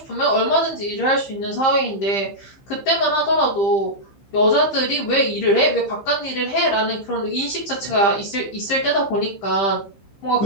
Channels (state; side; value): late; right; 15 ms